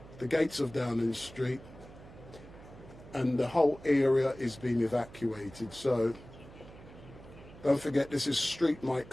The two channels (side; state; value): right; noise; hum, 18 dB below the sound